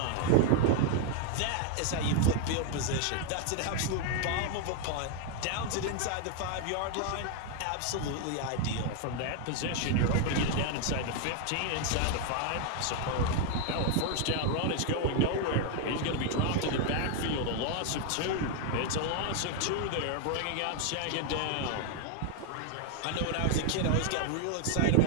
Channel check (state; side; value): different; both; correlation 0.00